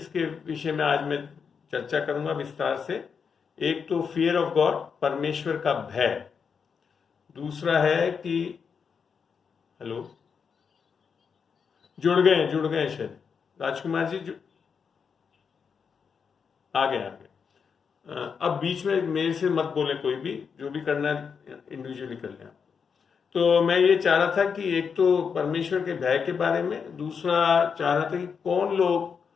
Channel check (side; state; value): right; quieter; 6.2 dB